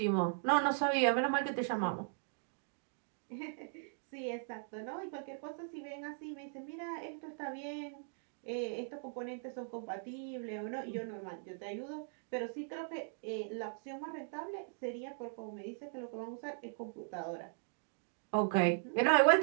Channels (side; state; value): left; silent; digital silence